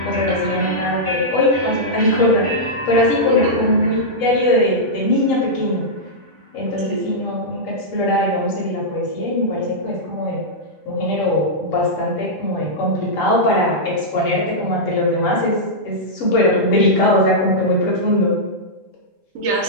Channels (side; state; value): both; normal; correlation -0.10